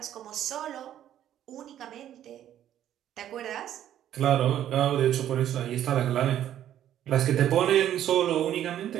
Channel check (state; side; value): quieter; left; 11.3 dB